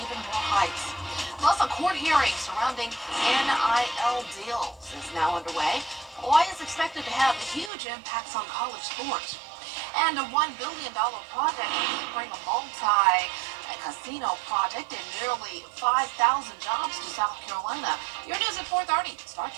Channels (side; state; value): left; drops out; at 7.7 s